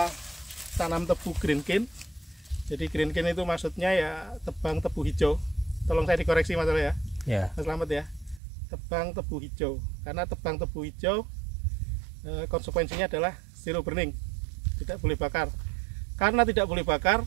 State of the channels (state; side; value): drops out; left; at 8.4 s